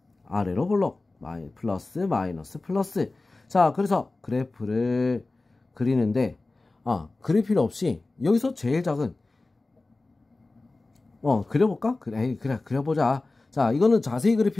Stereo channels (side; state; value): right; quieter; 3.2 dB